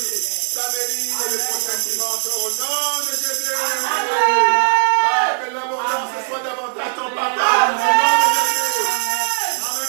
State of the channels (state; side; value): silent; left; 67 dB below the other